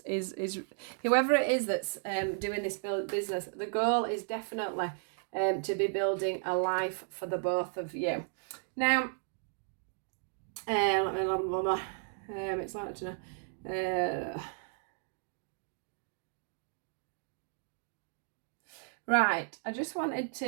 whoever it is that's doing this business, the goal is definitely to be building a life for the both of you. Now, it's like to know. Right, I just wanted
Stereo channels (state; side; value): silent; left; digital silence